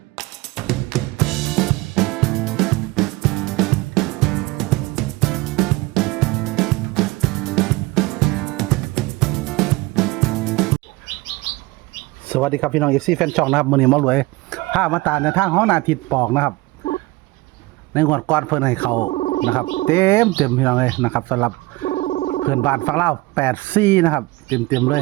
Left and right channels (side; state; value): left; quieter; 21.3 dB